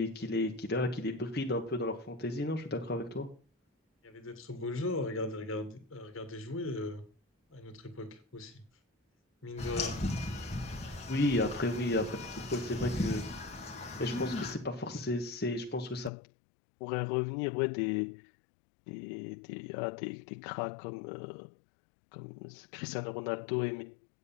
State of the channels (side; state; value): right; drops out; at 16.1 s